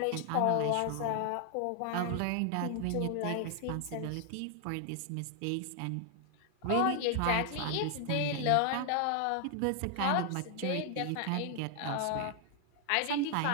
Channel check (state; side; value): different; both; correlation 0.00